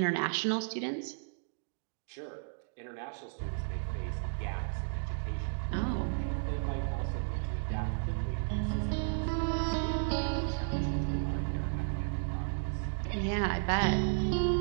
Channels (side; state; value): left; silent; digital silence